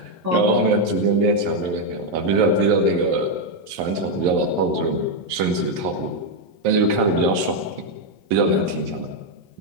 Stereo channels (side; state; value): left; late; 11 ms